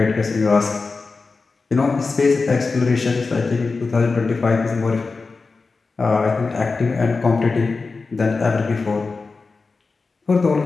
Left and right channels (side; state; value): right; quieter; 4.2 dB